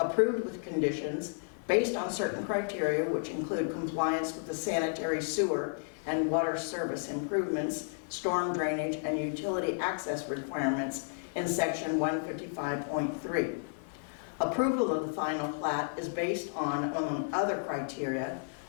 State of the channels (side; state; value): right; silent; digital silence